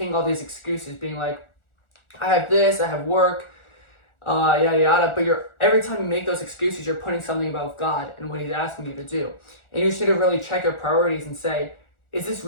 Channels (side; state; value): right; late; 1.4 ms